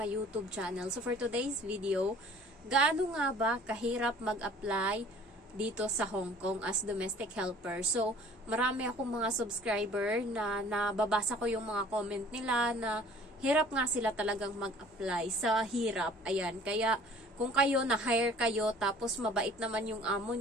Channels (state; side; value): normal; both; correlation 0.51